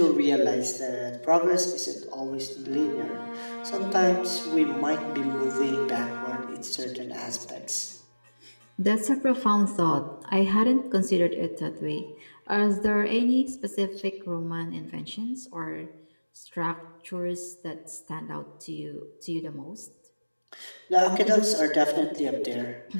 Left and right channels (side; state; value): both; inverted; correlation -1.00